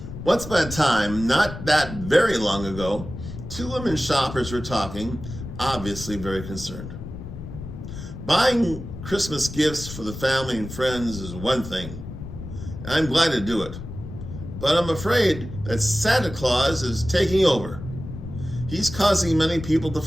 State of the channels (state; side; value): noise; left; rumble, 10 dB below the sound